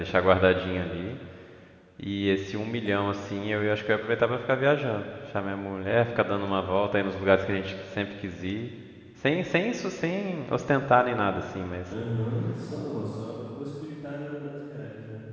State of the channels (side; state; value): both; identical; correlation 1.00